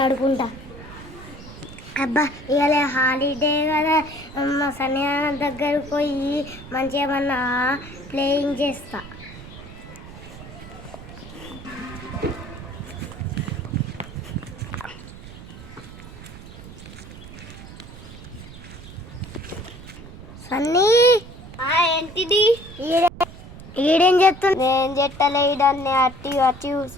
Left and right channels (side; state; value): right; noise; rumble, 15 dB below the sound